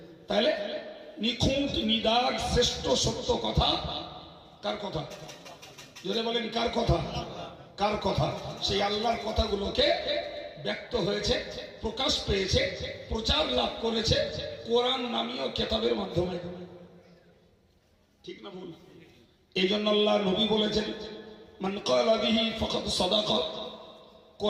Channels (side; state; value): both; identical; correlation 1.00